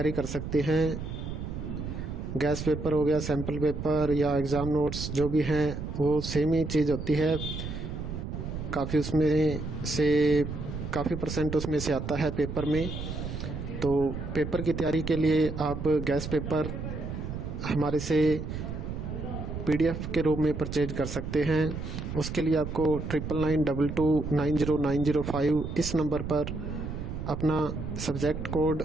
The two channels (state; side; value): noise; right; rumble, 6 dB below the sound